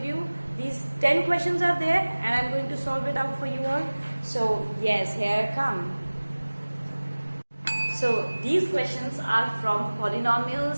you these 10 questions are there and I'm going to solve it out for you all. So yes, here I come. So these questions are from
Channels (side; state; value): both; inverted; correlation -1.00